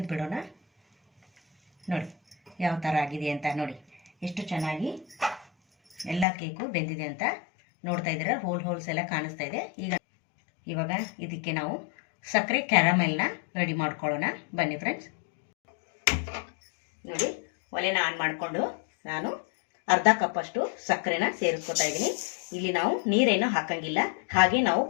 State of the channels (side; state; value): right; drops out; at 6.2 s